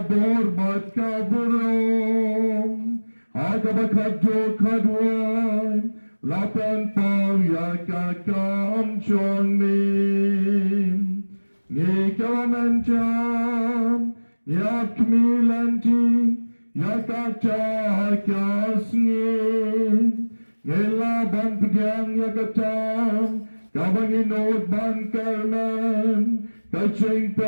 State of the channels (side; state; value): both; inverted; correlation -1.00